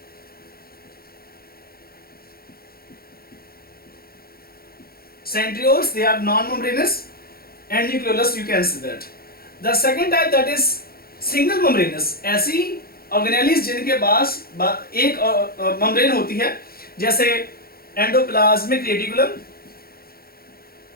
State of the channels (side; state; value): right; late; 0.44 ms